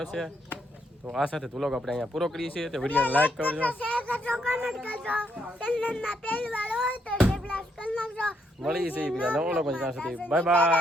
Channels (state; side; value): normal; both; correlation 0.75